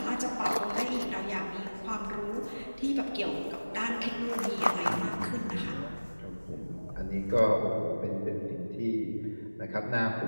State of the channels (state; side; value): inverted; both; correlation -1.00